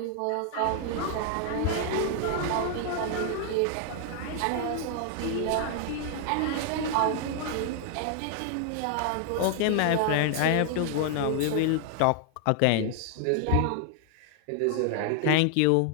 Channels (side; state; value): both; different; correlation 0.00